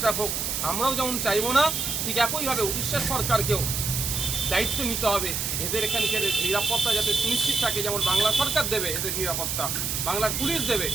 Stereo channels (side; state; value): right; noise; hiss, 1 dB below the sound